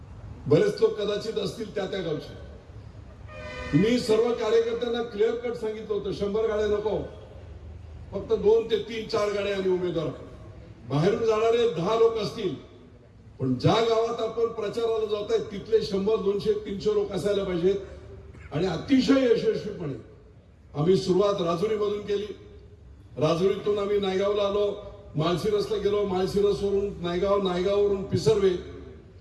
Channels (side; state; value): both; identical; correlation 1.00